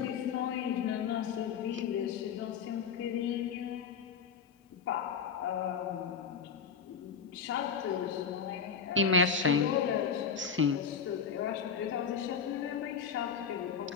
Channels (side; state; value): right; quieter; 6.3 dB